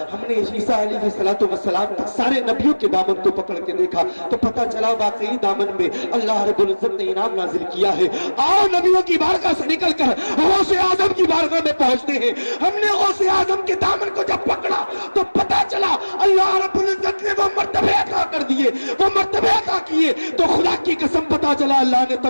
ہم نے عیسیٰ علیہ السلام تک سارے نبیوں کے دامن کو پکڑ کے دیکھا تو پتہ چلا واقعی دامن میں اللہ رب العزت نے انعام نازل کیا ہے۔ آؤ نبیوں کی بارگاہ سے نکل کر غوث اعظم کی بارگاہ میں پہنچتے ہیں۔ ہم نے غوث اعظم کے دامن کو جب پکڑا تو پتہ چلا اللہ رب العزت نے وہ مرتبے عطا کر دیے، وہ مرتبے عطا کیے تو خدا کی قسم پتہ چلا اللہ نے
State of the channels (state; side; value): inverted; both; correlation -1.00